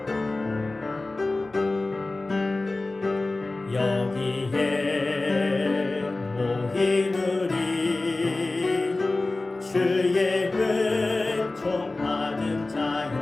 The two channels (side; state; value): right; quieter; 3.1 dB